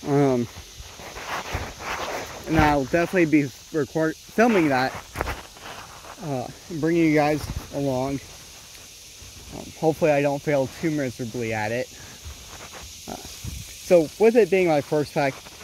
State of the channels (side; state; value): both; identical; correlation 1.00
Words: and I'll definitely be filming that, bringing you guys along. Hopefully I don't fail too miserably at it. So with it being my first pack